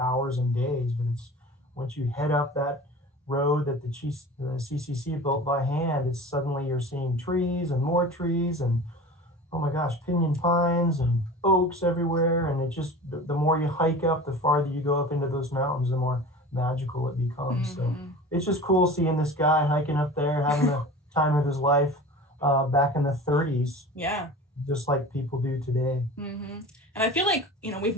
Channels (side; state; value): both; normal; correlation 0.37